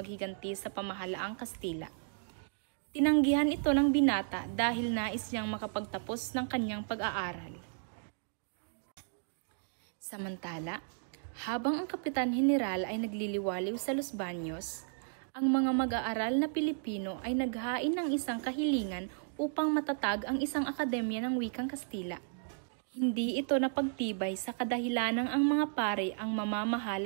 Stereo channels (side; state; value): left; silent; digital silence